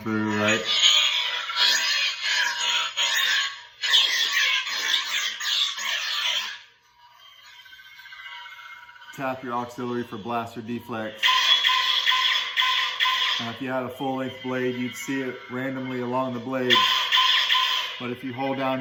right? Tap your auxiliary for blast or deflex. Now if you had a full-length blade, you'd see it randomly along the blade. But if you hold down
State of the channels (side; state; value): both; identical; correlation 1.00